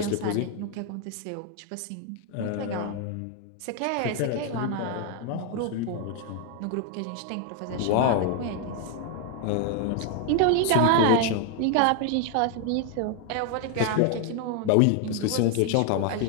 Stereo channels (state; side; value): different; both; correlation 0.01